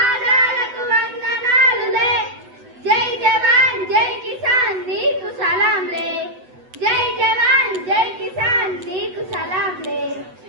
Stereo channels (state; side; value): late; left; 8.1 ms